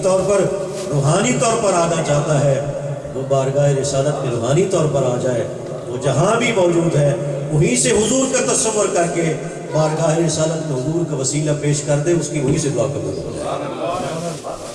طور پر روحانی طور پر آنا چاہتا ہے وہ بارگاہ رسالت میں روحانی طور پر آ جائے. وہ جہاں بھی موجود ہے وہیں سے حضور کا تصور کر کے بارگاہ رسالت میں حضور کا وسیلہ پیش کر دے، اس کی وہیں سے دعا قبول ہو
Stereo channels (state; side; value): identical; both; correlation 1.00